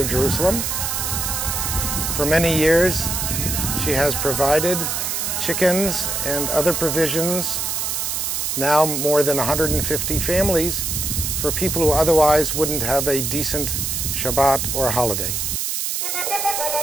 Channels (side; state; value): right; noise; hiss, 1 dB below the sound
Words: Jerusalem. For many years, she has provided chickens and other provisions, now more than 150 families, for people who otherwise wouldn't have a decent Shabbat or holiday.